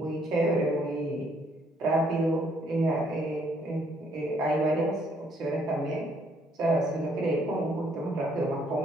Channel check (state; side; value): normal; both; correlation 0.67